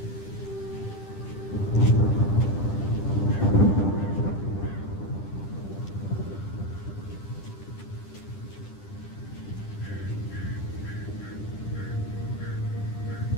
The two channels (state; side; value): late; right; 10 ms